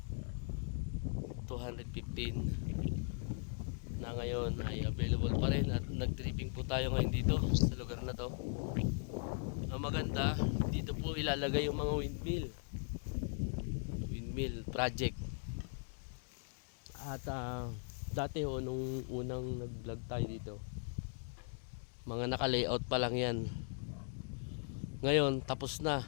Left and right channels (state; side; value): silent; right; 52 dB below the other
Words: na ngayon ay available pa rin at nag-tripping po tayo ngayon dito sa lugar na to. Ang maganda, dito po ilalagay yung mga windmill project. At dati nung unang nag-vlog tayo dito, mga naka-layout pa lang yan. Ngayon tapos na,